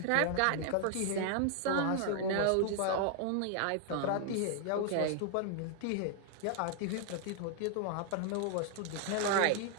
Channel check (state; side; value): different; both; correlation 0.00